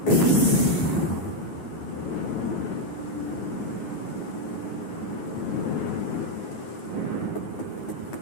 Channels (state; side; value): late; right; 9.4 ms